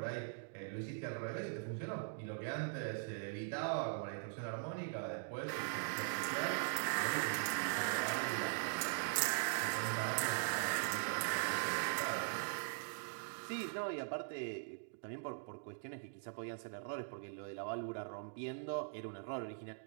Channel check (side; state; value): left; silent; digital silence